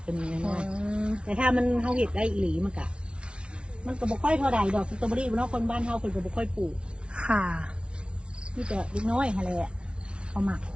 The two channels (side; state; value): left; late; 0.058 ms